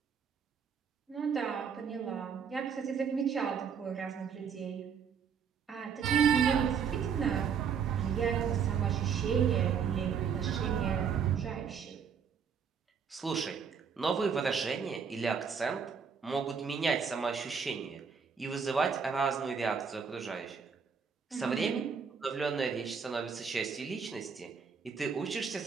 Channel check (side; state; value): left; quieter; 6.6 dB